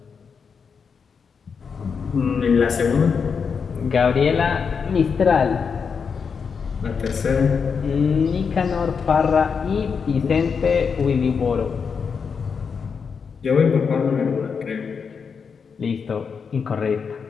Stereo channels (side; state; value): right; quieter; 6.0 dB